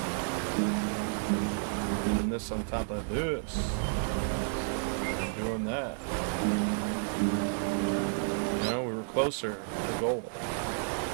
Doing this on top of this. Doing that. You know, we were closer to the goal.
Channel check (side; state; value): left; silent; digital silence